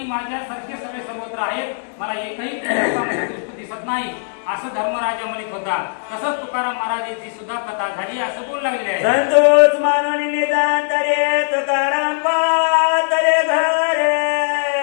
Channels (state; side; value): silent; right; digital silence